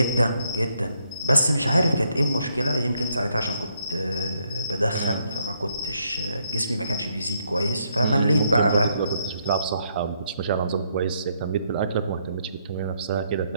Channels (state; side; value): inverted; both; correlation -0.74